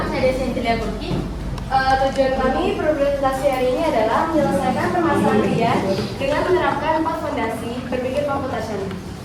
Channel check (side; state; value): both; identical; correlation 1.00